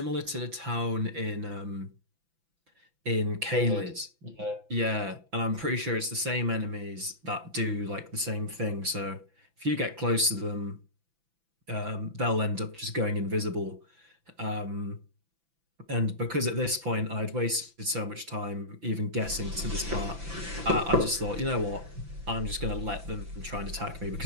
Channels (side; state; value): left; late; 5.9 ms